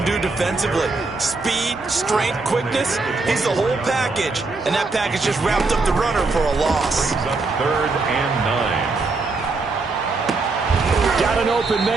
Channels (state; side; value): quieter; left; 3.7 dB